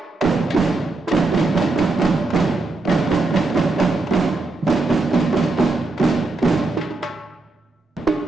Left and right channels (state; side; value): quieter; left; 3.2 dB